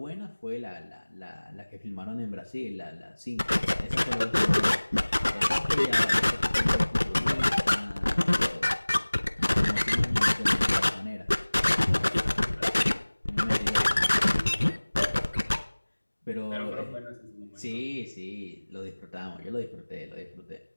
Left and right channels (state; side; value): inverted; both; correlation -1.00